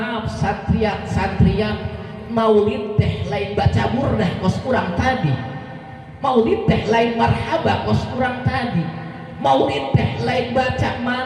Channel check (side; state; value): both; identical; correlation 1.00